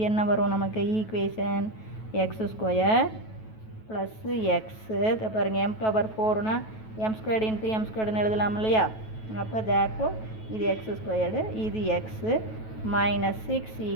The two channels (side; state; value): right; late; 9.2 ms